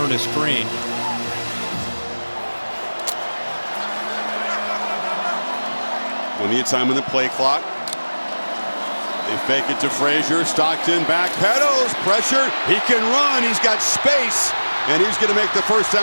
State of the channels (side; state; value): both; inverted; correlation -1.00